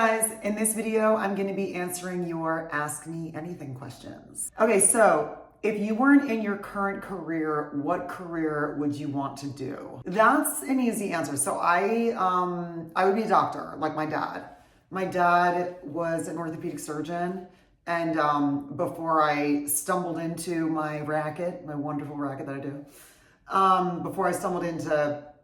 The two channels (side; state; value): both; identical; correlation 1.00